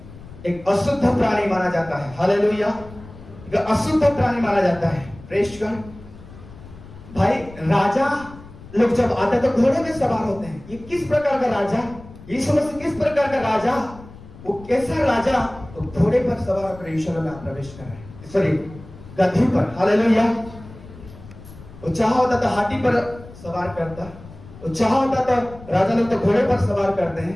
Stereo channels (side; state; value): left; noise; rumble, 18 dB below the sound